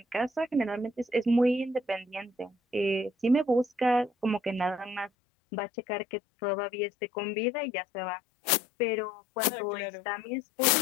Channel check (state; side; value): drops out; right; at 5.1 s